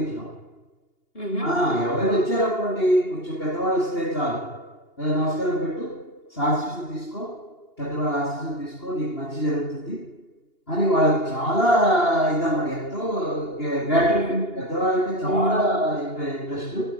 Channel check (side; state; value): right; late; 2.8 ms